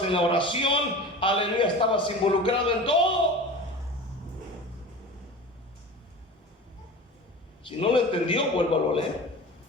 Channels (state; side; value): normal; both; correlation 0.35